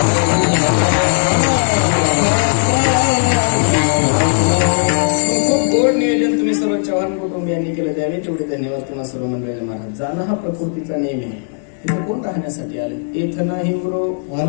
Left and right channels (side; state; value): right; silent; digital silence